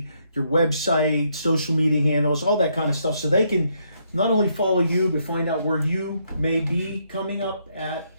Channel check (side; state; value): both; inverted; correlation -0.74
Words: your website, social media handles, all that kind of stuff, so they can not only follow you, but find out where you may be coming up at